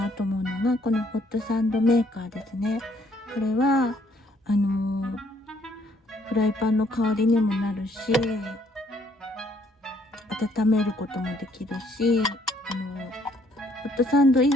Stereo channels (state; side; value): normal; both; correlation 0.66